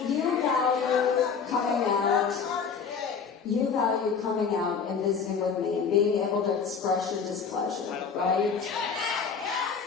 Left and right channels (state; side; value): quieter; right; 6.0 dB